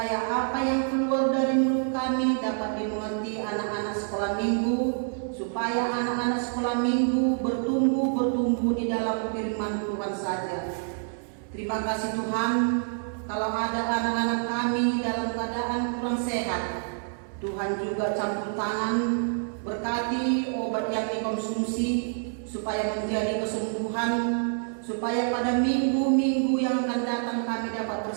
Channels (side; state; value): left; silent; 60 dB below the other